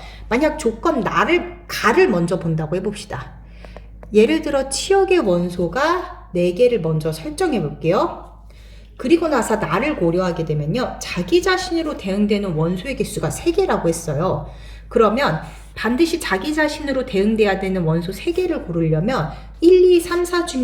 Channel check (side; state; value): both; identical; correlation 1.00